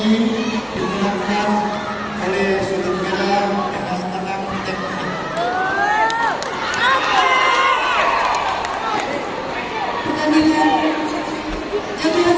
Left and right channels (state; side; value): identical; both; correlation 1.00